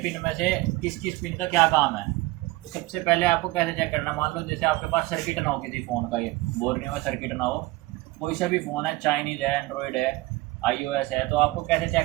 पिन में से किस किस पिन का क्या काम है। तो सबसे पहले आपको कैसे चेक करना, मान लो जैसे आपके पास सर्किट ना हो किसी फ़ोन का, ये बोर्नियो का सर्किट ना हो, कोई सा भी फ़ोन है, चाइनीज़ है, एंड्रॉयड है, iOS है, तो आपको कैसे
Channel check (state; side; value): quieter; left; 20.0 dB